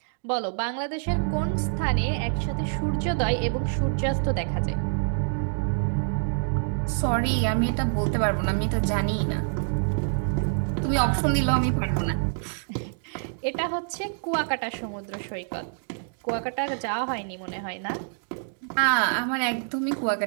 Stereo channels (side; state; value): left; silent; digital silence